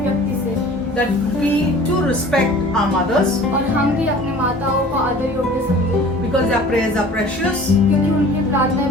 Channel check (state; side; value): normal; both; correlation 0.45